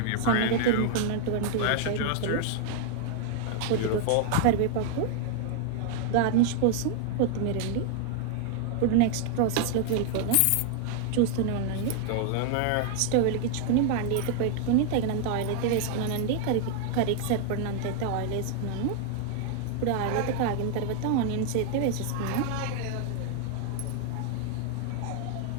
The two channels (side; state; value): both; different; correlation 0.00